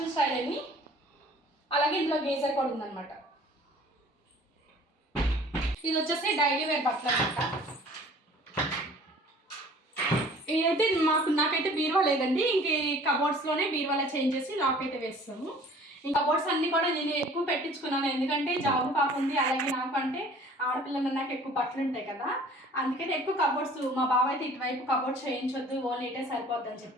స్టైల్ అని, అలాగే ఇందులో గేజర్ కూడా ఉందన్నమాట. ఇది వచ్చేసి డైలీ వేర్ బట్టలు అనమాట. ఇదైతే నాకైతే బీరువా లేదండి, ఇంక ఈ కబోర్డ్స్లోనే బీరువాలో చేంజ్ చేసి లాక్ అయితే వేస్తాము. ఇంకా కబోర్డ్స్ అన్నీ కూడా నేను ఎక్కువ పెట్టించుకున్నాను, ఎందుకంటే జాబు కాకుంది. అలాగే నాకు అంటే ఆడపిల్లలు నాకు ఎక్కువ బట్టలు ఉంటాయి కదా, అందుకని ఎక్కువ కబోర్డ్స్. మా బావ అయితే ఇటువైపు కబోర్డ్స్ చేయించొద్దు, ఓన్లీ ఇటే సరిపోద్దని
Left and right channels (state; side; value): normal; both; correlation 0.50